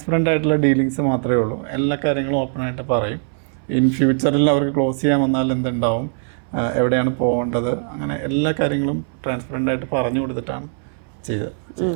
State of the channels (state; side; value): silent; left; 64 dB below the other